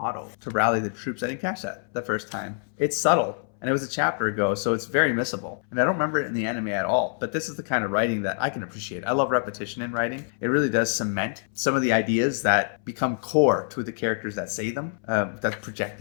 to rally the troops. I didn't catch that the first time. It's subtle, and it was a chapter ago, so it's very missable, and I don't remember it in the anime at all. But this is the kind of writing that I can appreciate. I love repetition in writing. It really does cement some of the ideas that become core to the characters that say them, that project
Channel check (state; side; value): silent; right; 61 dB below the other